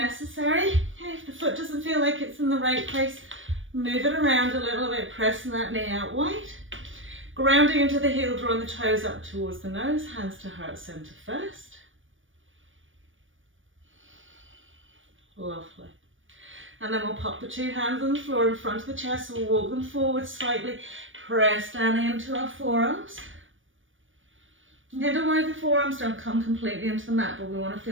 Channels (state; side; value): late; left; 0.57 ms